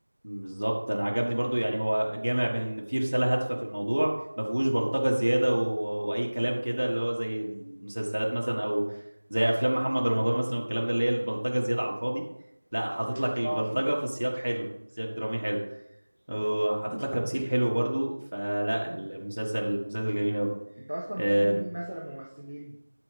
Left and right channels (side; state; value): both; inverted; correlation -1.00